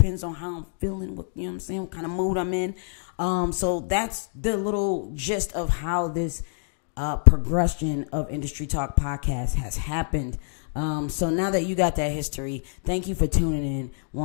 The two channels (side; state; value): right; silent; digital silence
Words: on how I'm feeling, what I'm saying, what kind of mood I'm in. So that's the little gist of how this progression of Industry Talk Podcast has happened. So now that you got that history, thank you for tuning in